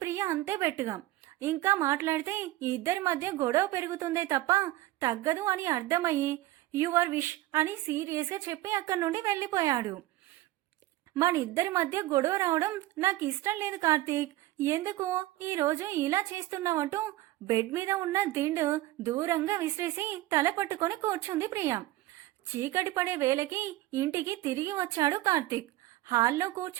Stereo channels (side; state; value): left; quieter; 16.6 dB